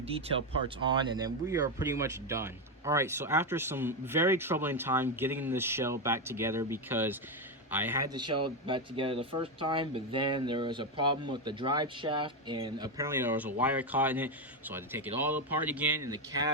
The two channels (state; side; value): normal; both; correlation 0.08